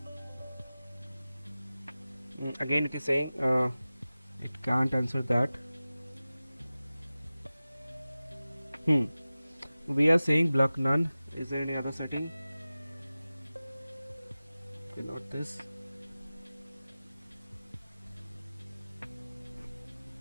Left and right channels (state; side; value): inverted; both; correlation -0.97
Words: Again it is saying it can't answer that. We are saying block none. Is there any other setting? Okay, not this.